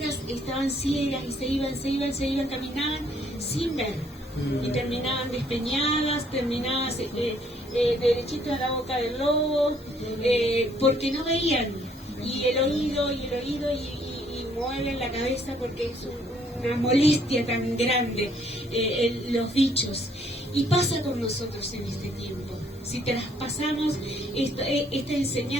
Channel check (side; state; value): both; normal; correlation 0.65